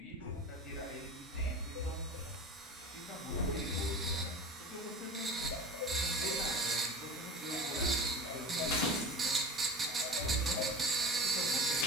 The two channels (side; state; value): both; normal; correlation 0.34